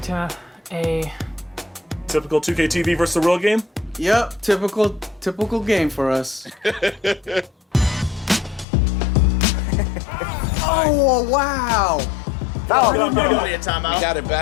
a typical 2K TV versus the real game. Yep, typical game for us. Oh wow! Oh, We got it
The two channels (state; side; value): drops out; right; at 8.7 s